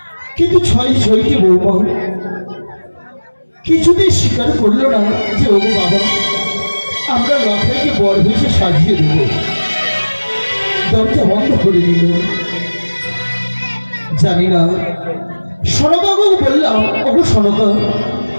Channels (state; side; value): inverted; both; correlation -1.00